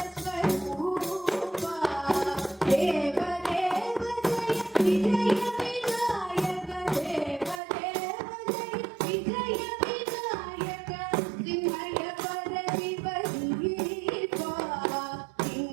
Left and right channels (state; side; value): drops out; left; at 7.6 s